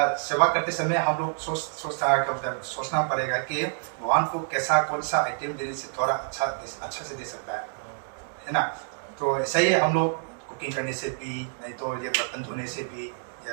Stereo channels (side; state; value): left; silent; digital silence